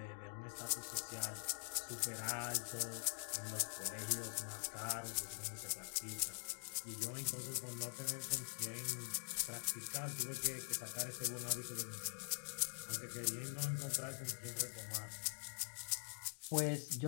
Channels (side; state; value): right; silent; digital silence